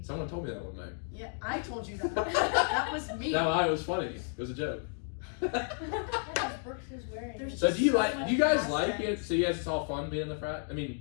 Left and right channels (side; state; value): right; silent; 56 dB below the other